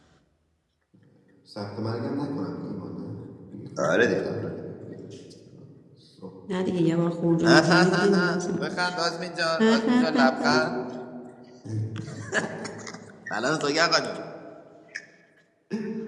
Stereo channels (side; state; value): both; identical; correlation 1.00